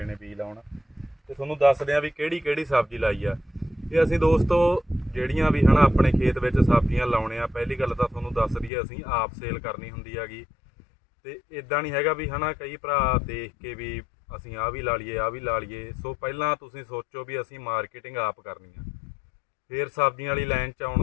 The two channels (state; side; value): drops out; right; at 8.7 s